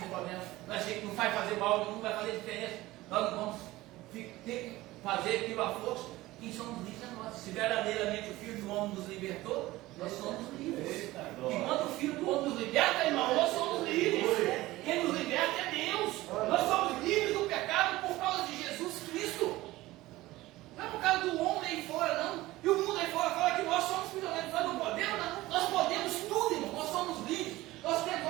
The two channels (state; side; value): quieter; left; 18.0 dB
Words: problema. Nós achamos que não vai fazer mal, não vai fazer diferença. Nós não vamos ter que fazer aquilo à força. Quem somos livres é nós. Se verdadeiramente o Filho do Homem nos libertou, nós somos livres. E quando o Filho do Homem nos liberta, irmão, nós somos livres. Quem nos liberta é Deus. Nós somos livres do pecado por causa de Jesus Cristo. Não é por causa do homem aí fora, não. E o mundo aí fora fala que nós somos prisioneiros. Nós não podemos, não. Nós podemos tudo, irmão. Nós somos livres. Nós